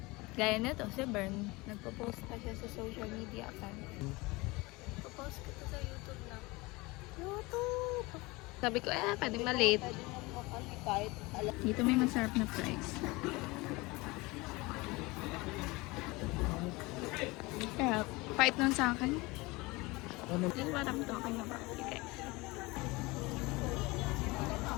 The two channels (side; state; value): right; quieter; 23.3 dB